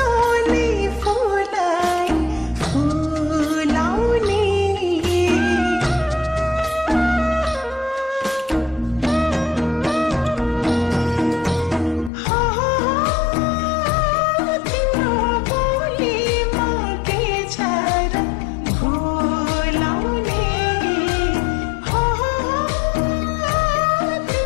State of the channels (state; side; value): drops out; right; at 12.1 s